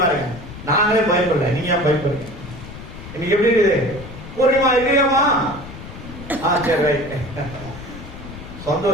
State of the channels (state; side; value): noise; left; rumble, 13 dB below the sound